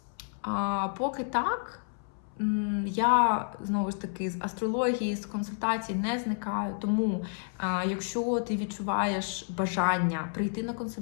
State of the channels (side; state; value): right; silent; 58 dB below the other